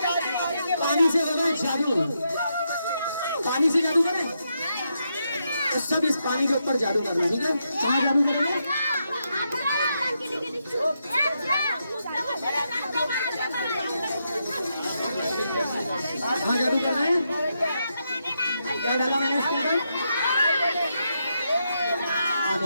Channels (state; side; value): inverted; both; correlation -0.82